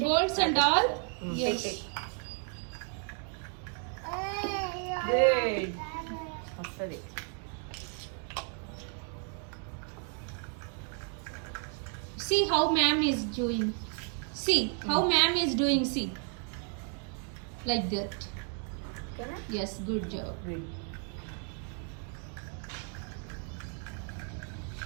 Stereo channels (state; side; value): quieter; left; 39.0 dB